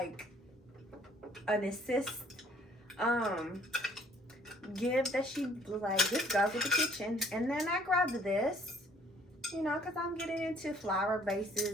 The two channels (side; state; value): both; normal; correlation 0.59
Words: an assist give that she was like, this goes with the kitchen. And then I grabbed this, you know, because I'm getting into flower